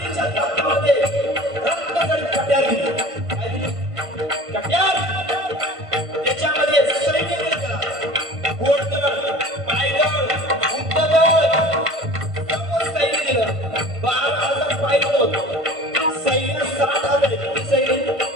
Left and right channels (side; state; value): left; late; 1.5 ms